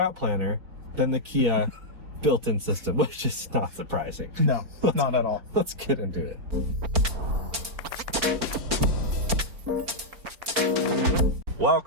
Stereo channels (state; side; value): late; left; 4.4 ms